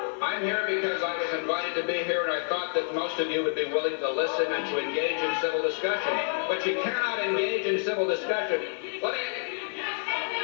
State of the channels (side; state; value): right; silent; 57 dB below the other